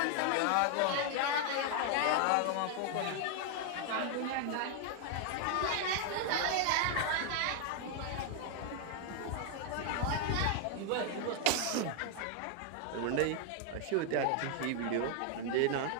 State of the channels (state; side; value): different; both; correlation 0.00